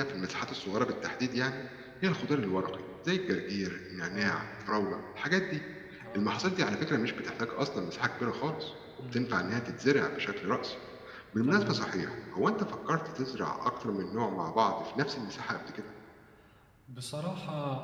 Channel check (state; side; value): identical; both; correlation 1.00